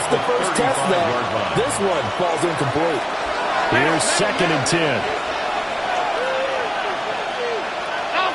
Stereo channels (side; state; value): both; identical; correlation 1.00